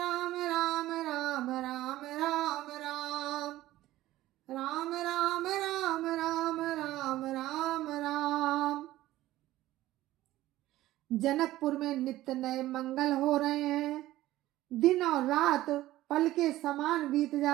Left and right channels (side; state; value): left; quieter; 15.7 dB